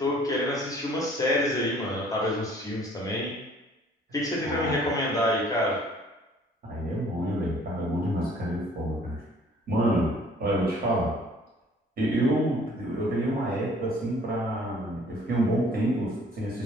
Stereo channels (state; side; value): normal; both; correlation 0.56